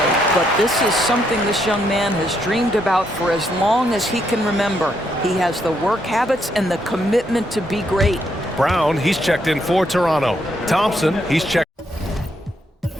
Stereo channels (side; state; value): both; normal; correlation 0.76